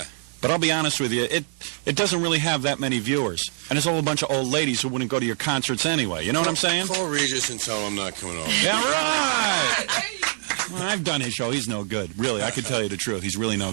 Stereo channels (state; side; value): silent; left; 62 dB below the other